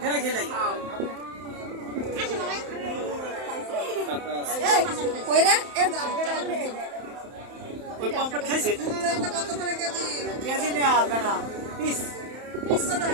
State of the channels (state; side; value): late; left; 31 ms